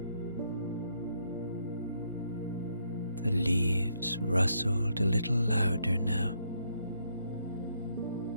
The leaves rustled a little louder now,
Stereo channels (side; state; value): both; inverted; correlation -0.74